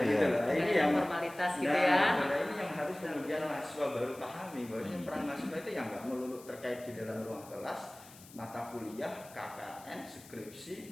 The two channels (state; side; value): noise; left; hiss, 20 dB below the sound